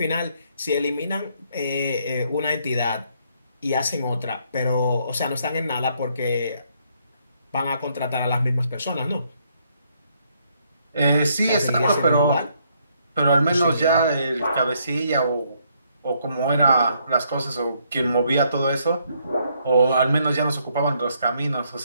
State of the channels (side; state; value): both; inverted; correlation -0.71